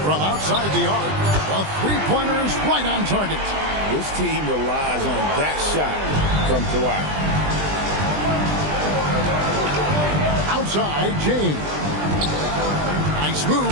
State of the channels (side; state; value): left; late; 20 ms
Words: From outside the arc. A three-pointer is right on target. This team relies on that shot from Kawhi. Outside, James. Nice